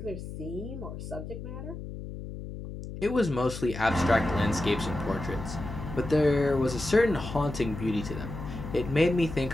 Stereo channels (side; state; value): left; noise; hum, 9 dB below the sound